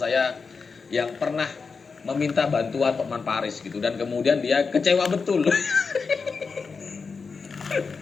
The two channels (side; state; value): right; quieter; 4.9 dB